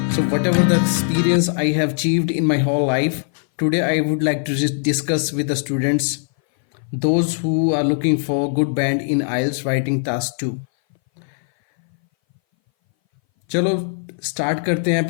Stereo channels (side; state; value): right; silent; 60 dB below the other